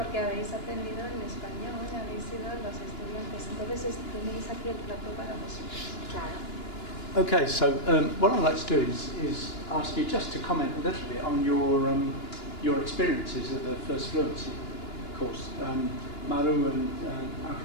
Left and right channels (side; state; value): right; late; 2.9 ms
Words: habéis aprendido en español, habéis sido los estudiantes, entonces tenéis aquí el plato para vosotros. Claro. Okay, so what I'd like to do is ask you just to comment a little bit on your experiences of the First Fluency course. Maru and